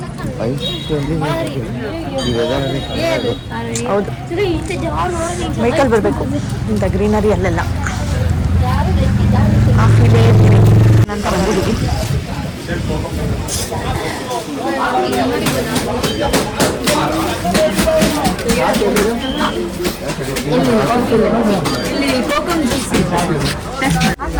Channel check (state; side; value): identical; both; correlation 1.00